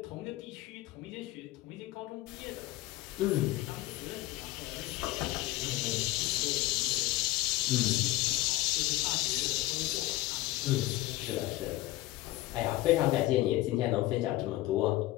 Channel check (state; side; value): quieter; right; 17.3 dB